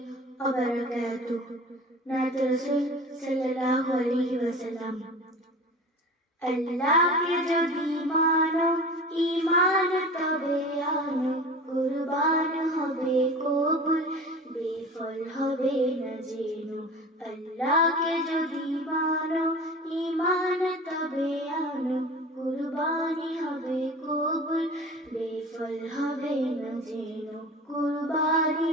ওয়া বারাকাতুহু। নাত রাসূল সাল্লাল্লাহু আলাইহি ওয়াসাল্লাম। আল্লাহকে যদি মানো ঈমান তবে আনো, কুরবান হবে কবুল, বেফল হবে না জেনো। আল্লাহকে যদি মানো ঈমান তবে আনো, কুরবানি হবে কবুল, বেফল হবে না জেনো। কুরবানি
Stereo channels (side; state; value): both; normal; correlation 0.37